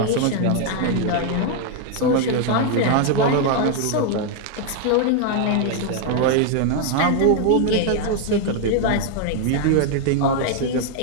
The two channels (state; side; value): different; both; correlation 0.00